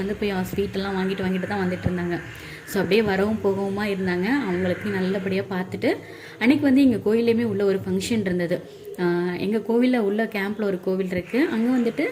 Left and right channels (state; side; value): identical; both; correlation 1.00